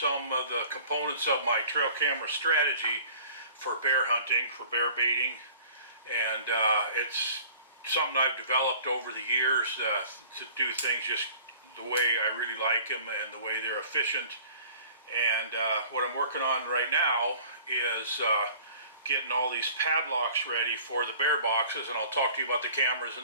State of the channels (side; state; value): both; inverted; correlation -0.47